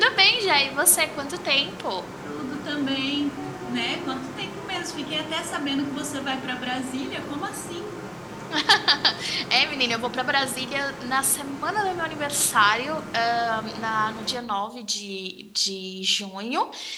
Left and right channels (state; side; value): identical; both; correlation 1.00